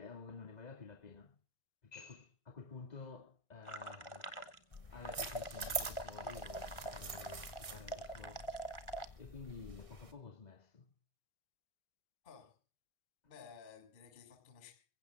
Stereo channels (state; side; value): late; right; 1.6 ms